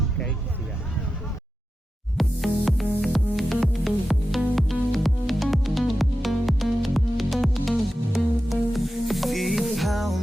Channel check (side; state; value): both; normal; correlation 0.91